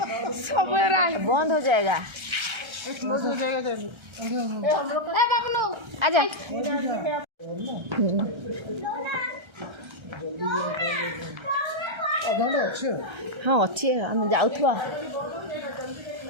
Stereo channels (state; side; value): late; left; 1.3 ms